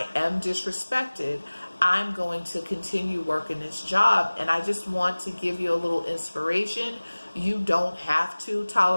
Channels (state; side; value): inverted; both; correlation -1.00